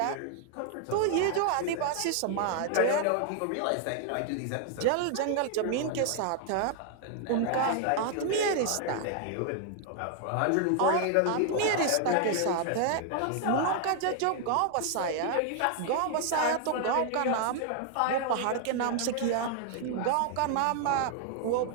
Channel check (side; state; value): both; different; correlation 0.00